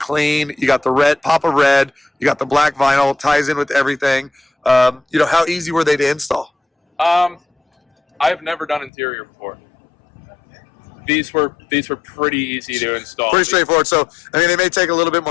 You got the red, pop of red. You got the black vinyl. Ties in with everything. You know, how easy were they to install? I've never done interior before. These were pretty easy to install. Pretty straightforward. So, I mean, they may take a little bit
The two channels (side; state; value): right; drops out; at 8.9 s